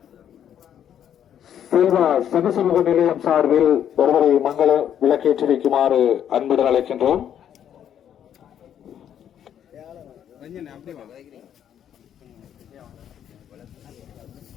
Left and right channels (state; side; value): quieter; right; 9.6 dB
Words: செல்வா சகசமூக நிலையம் சார்பில் ஒருவரை மங்கள விளக்கேற்றி வைக்குமாறு அன்புடன் அழைக்கின்றோம்.